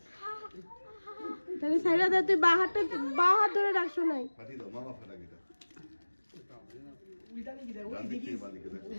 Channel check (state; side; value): inverted; both; correlation -1.00